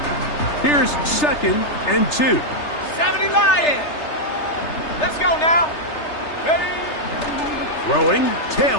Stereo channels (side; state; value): right; late; 3.3 ms